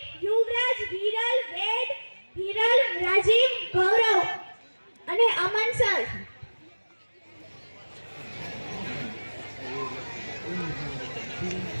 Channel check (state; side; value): inverted; both; correlation -1.00